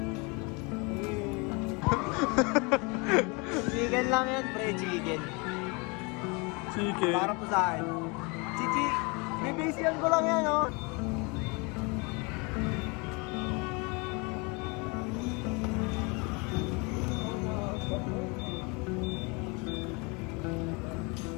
Chicken lang yan, pre. Chicken. Chicken. Para po sa akin. Chichi, bibisiyan ko lang yan, oh.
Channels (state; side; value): quieter; right; 29.5 dB